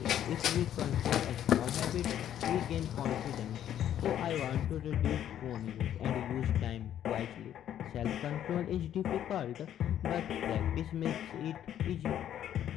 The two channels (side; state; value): right; quieter; 10.7 dB